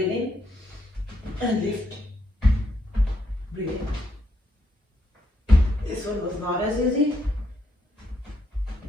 in and lift. Breathe in. This one was not as easy,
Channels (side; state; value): both; normal; correlation 0.76